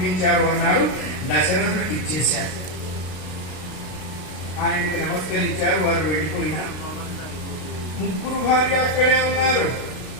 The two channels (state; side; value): late; right; 33 ms